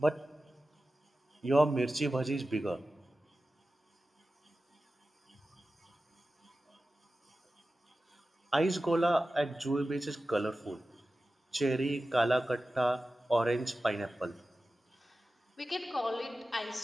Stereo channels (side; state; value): both; normal; correlation 0.94